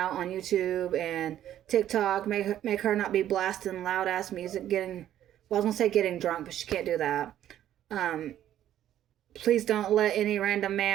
on YouTube and TikTok. Make her not be blasting loud ass music, getting, well, I was gonna say getting drunk, but she can't do that. Please don't let any random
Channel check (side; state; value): left; quieter; 11.6 dB